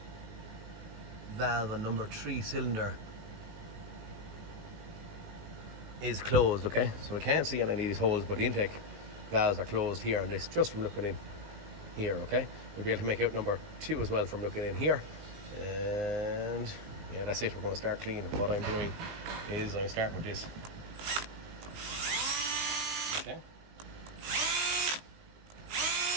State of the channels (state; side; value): late; left; 19 ms